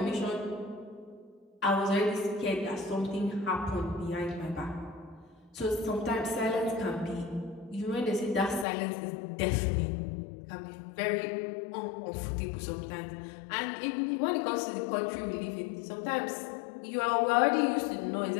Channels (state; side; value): drops out; right; at 8.7 s